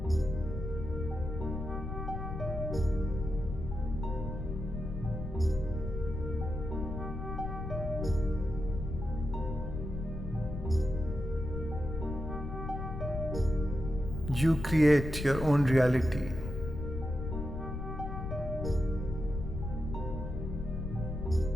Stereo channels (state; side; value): noise; left; rumble, 5 dB below the sound